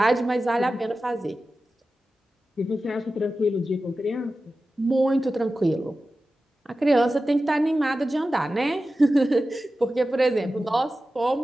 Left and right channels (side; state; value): both; normal; correlation 0.94